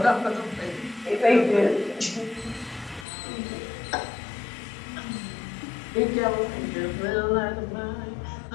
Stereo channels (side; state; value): right; drops out; at 3.1 s